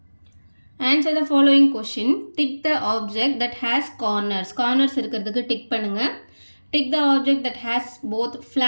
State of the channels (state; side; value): inverted; both; correlation -1.00